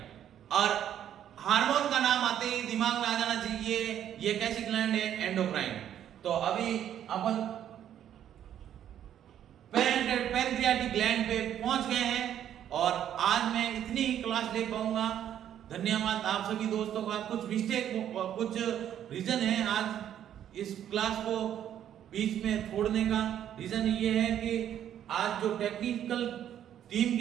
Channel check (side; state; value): left; quieter; 10.4 dB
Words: और हार्मोन का नाम आते ही दिमाग में आ जाना चाहिए ये कैसी ग्लैंड है, एंडोक्राइन। तो अभी अपन पैनक्रियाटिक ग्लैंड पे पहुंच गए हैं और आज मैं इतनी ही क्लास ले पाऊंगा। धन्यवाद आप सभी दोस्तों का। कुछ मिस्टेक, कुछ रीजन है आज इस क्लास को बीच में छोड़ने का। रीजन ये है कि आज जो टेक्निकल टीम